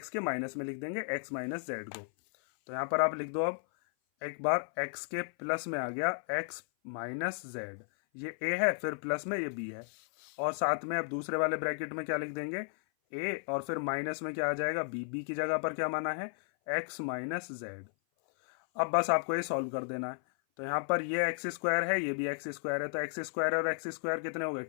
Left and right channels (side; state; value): right; silent; 55 dB below the other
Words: के माइनस में लिख देंगे x माइनस जेड को। तो यहाँ पर आप लिख दो, अब एक बार x के प्लस में आ गया x माइनस जेड, ये a है, फिर प्लस में ये b है, और साथ में अब दूसरे वाले ब्रैकेट में क्या लिख देंगे, a, और फिर माइनस में क्या आ जाएगा b। b की जगह पर क्या माना है, x माइनस जेड। अब बस आपको ये सॉल्व कर देना है। तो यहाँ पर ये एक्स स्क्वायर है, ये भी एक्स स्क्वायर है, तो एक्स स्क्वायर और एक्स स्क्वायर कितने हो गए,